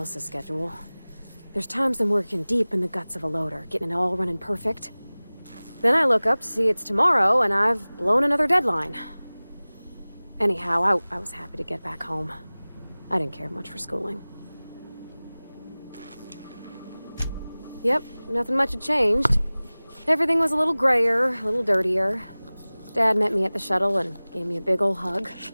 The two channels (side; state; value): both; inverted; correlation -0.99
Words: schedule. There's times I'm working deep in the guts of a loader, getting it all running perfect. Then I look up to see it's tomorrow, and I've blown another deadline. Anyhow, I was happy to get back home. I didn't care much for schooling. Yep, nothing much had changed. Everything was a little grayer, a little dirtier. Dad met me at the shuttle and gave me a big ol' hug.